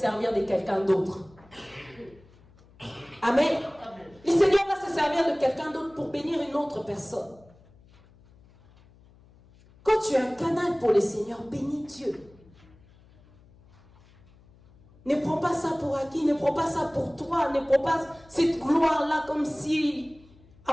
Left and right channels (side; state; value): left; noise; hum, 27 dB below the sound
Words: de quelqu'un d'autre. Amen. Le Seigneur va se servir de quelqu'un d'autre pour bénir une autre personne. Quand tu es un canal pour le Seigneur, bénis Dieu. Ne prends pas ça pour acquis, ne prends pas ça pour toi, ne prends pas cette gloire-là comme si,